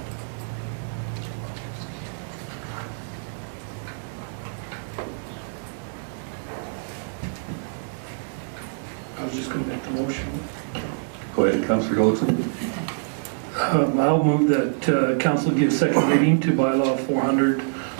I was just going to make the motion. Go ahead, Councillor Goldson. I'll move that council give second reading to bylaw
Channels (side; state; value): left; silent; digital silence